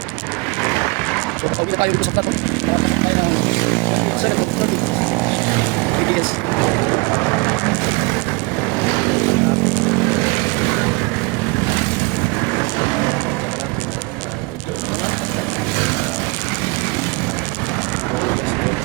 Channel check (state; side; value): quieter; left; 27.4 dB